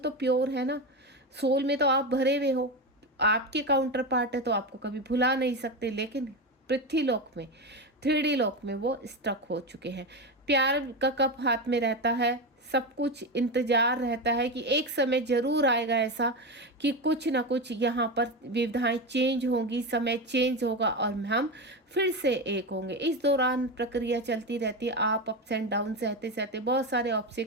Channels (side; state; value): both; normal; correlation 0.17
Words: प्योर है ना, सोल में तो आप भरे हुए हो, आपके काउंटर पार्ट है तो आपको कभी भुला नहीं सकते। लेकिन पृथ्वी लोक में, 3D लोक में वो स्टक हो चुके हैं। प्यार का कप हाथ में रहता है, सब कुछ इंतजार रहता है कि एक समय जरूर आएगा ऐसा कि कुछ ना कुछ यहाँ पर विविधाएं चेंज होंगी, समय चेंज होगा और हम फिर से एक होंगे। इस दौरान प्रक्रिया चलती रहती है, आप अप्स एंड डाउन सहते सहते बहुत सारे